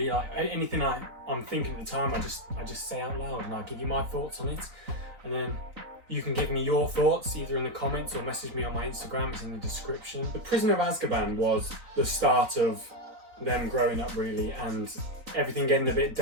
Like anything I'm thinking at the time, I just say out loud and I give you my thoughts on it. And then you can give me your thoughts either in the comments or message me on my Instagram, it's in the description. The Prisoner of Azkaban was the start of them growing up really, and everything getting a bit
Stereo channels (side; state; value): left; late; 3.9 ms